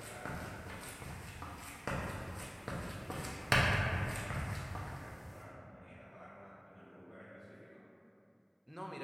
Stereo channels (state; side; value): identical; both; correlation 1.00